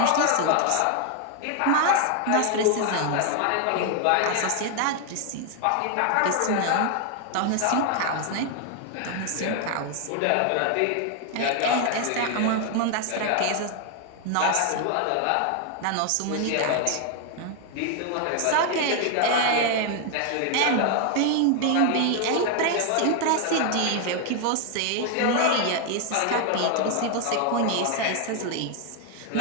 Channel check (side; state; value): both; different; correlation 0.00